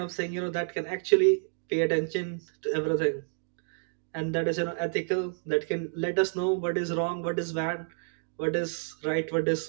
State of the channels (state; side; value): silent; left; digital silence